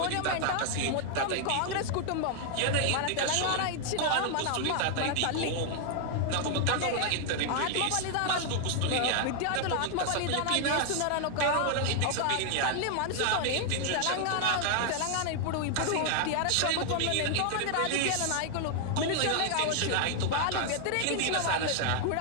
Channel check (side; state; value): both; different; correlation 0.00